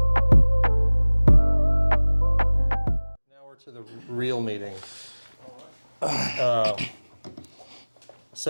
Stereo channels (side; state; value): both; inverted; correlation -1.00